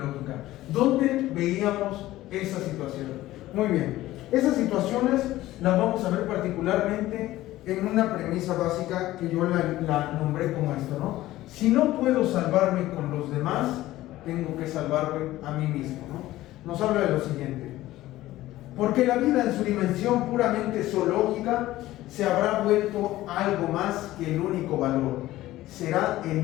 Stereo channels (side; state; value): right; quieter; 16.0 dB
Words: ¿Dónde veíamos esa situación? Muy bien. Esas situaciones las vamos a ver particularmente en una premisa básica que yo la nombré como esto, ¿no? Si no puedo salvarme con los demás, tengo que salvarme a mí mismo, ¿no? Nos habla de lo siguiente: porque la vida en su dimensión puramente zoológica se habrá vuelto algo más que el único valor, será